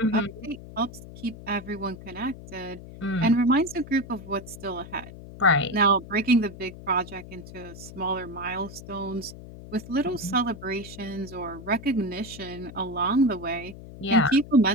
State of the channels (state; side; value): noise; left; hum, 15 dB below the sound